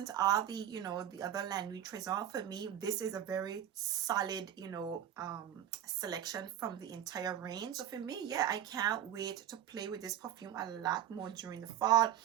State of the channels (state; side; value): quieter; left; 10.9 dB